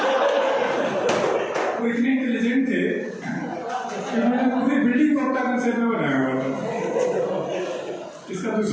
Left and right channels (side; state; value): both; identical; correlation 1.00